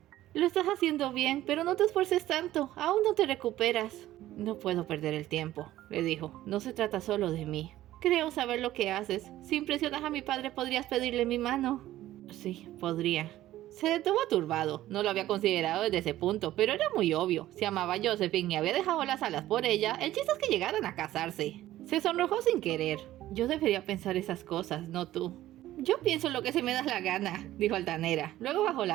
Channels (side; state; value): left; quieter; 14.4 dB